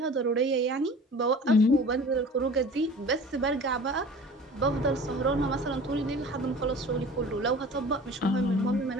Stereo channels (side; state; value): both; normal; correlation 0.42